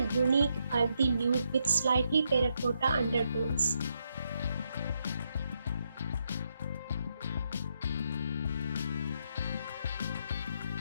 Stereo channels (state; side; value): inverted; both; correlation -0.79